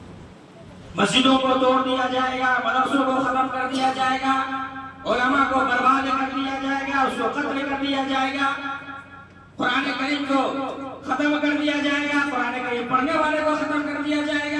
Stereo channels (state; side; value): identical; both; correlation 1.00